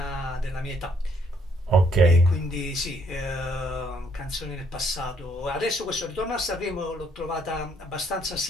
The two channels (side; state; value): both; normal; correlation 0.68